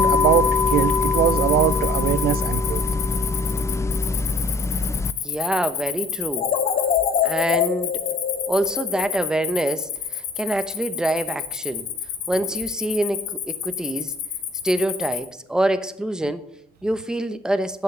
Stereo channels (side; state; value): both; normal; correlation 0.53